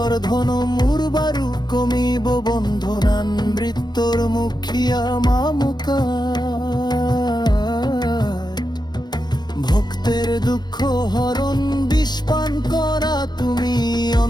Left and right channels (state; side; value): late; right; 0.21 ms